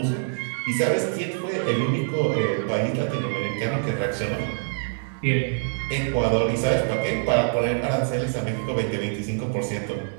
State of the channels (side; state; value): left; silent; digital silence